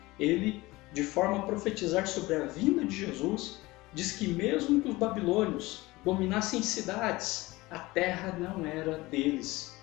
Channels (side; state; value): right; quieter; 20.6 dB